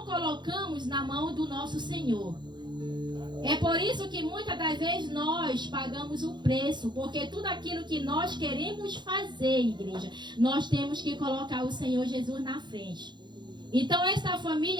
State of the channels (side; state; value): left; late; 0.22 ms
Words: colocamos na mão do nosso Senhor. É por isso que muitas das vezes nós pagamos o preço, porque tudo aquilo que nós queremos fazer, igreja, nós temos que colocar o Senhor Jesus na frente. Então essa